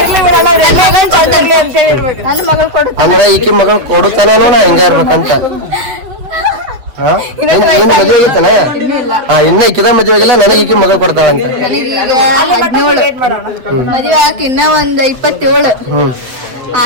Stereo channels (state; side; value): late; left; 8.0 ms